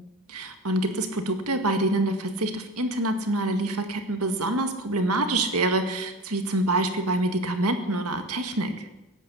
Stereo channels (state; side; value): normal; both; correlation 0.30